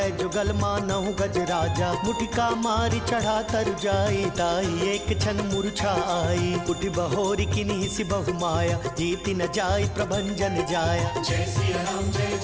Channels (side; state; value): both; identical; correlation 1.00